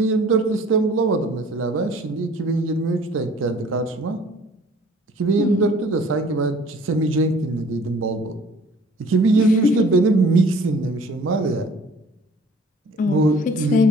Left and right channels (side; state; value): both; normal; correlation 0.52